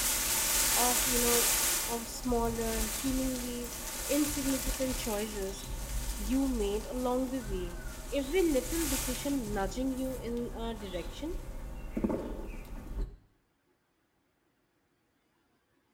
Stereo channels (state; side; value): identical; both; correlation 1.00